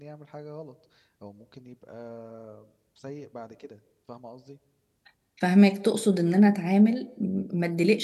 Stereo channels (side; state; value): both; identical; correlation 1.00